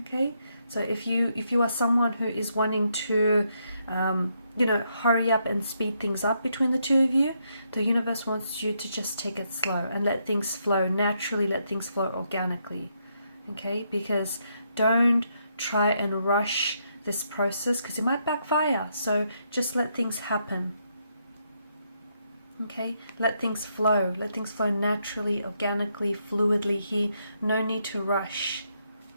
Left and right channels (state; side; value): inverted; both; correlation -0.77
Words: Okay, so if you are someone who is wanting to you know, hurry up and speed things up between the two of you, the universe wants you to just take it slow and let things flow naturally, let things flow organically. Okay, because don't try and rush this process because it might backfire. So just let things happen. Okay, let things flow naturally, organically, fluidly here. No need to rush,